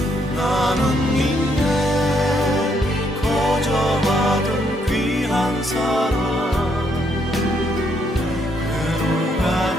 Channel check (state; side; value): normal; both; correlation 0.73